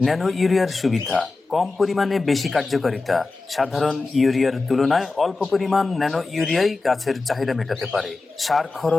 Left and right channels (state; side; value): quieter; right; 3.6 dB